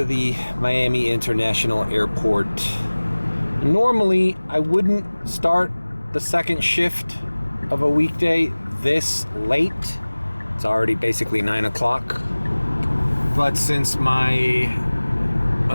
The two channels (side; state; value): both; inverted; correlation -1.00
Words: the Miami International Airport. Normally, I wouldn't start the second shift of a weekday this late. It's already basically 9 o'clock. But since my